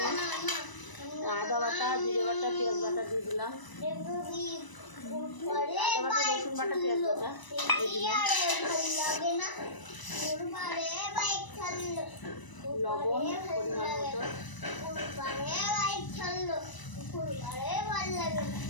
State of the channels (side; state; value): right; late; 1.0 ms